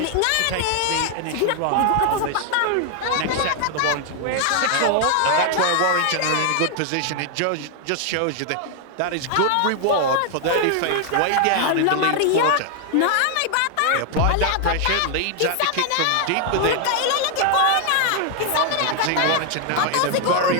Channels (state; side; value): different; both; correlation 0.00